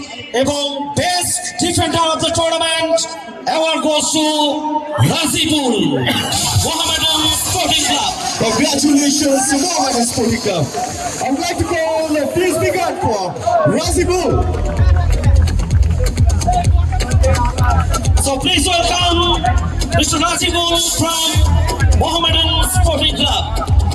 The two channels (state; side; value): identical; both; correlation 1.00